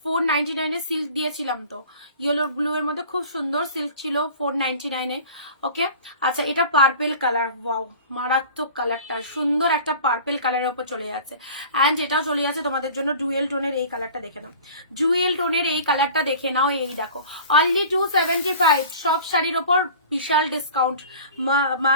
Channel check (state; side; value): inverted; both; correlation -0.42